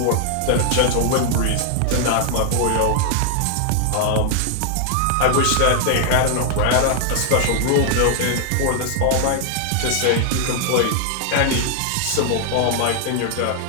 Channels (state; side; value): different; both; correlation 0.00